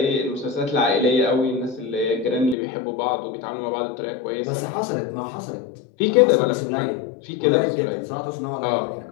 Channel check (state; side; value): drops out; right; at 2.6 s